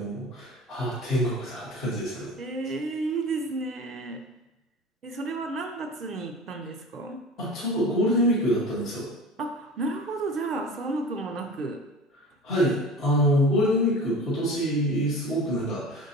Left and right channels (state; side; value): normal; both; correlation 0.36